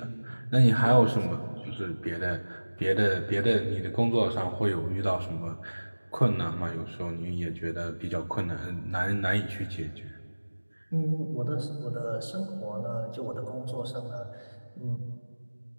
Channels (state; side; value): inverted; both; correlation -1.00